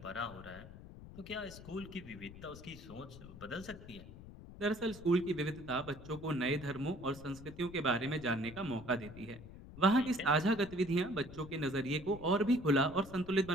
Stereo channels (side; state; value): left; noise; rumble, 15 dB below the sound